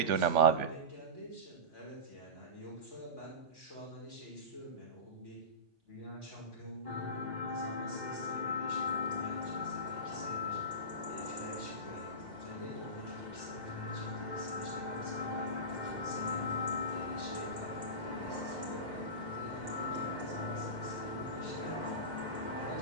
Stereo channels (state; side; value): normal; both; correlation -0.20